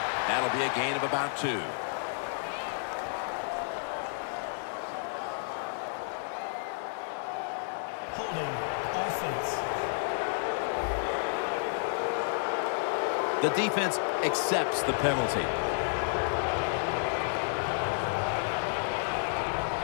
that'll be a gain of about 2. Holding offense. The defense accepts the penalty.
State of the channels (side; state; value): right; silent; 57 dB below the other